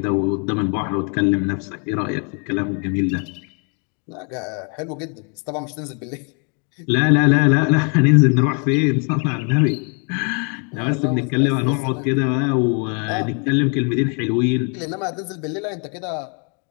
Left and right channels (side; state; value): right; quieter; 38.0 dB